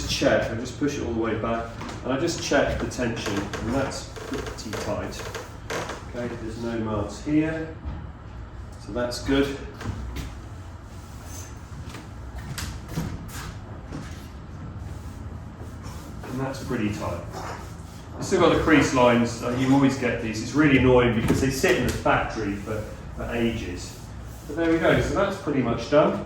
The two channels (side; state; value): both; identical; correlation 1.00